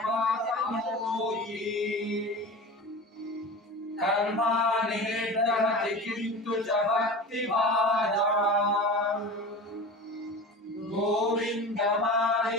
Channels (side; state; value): both; normal; correlation 0.33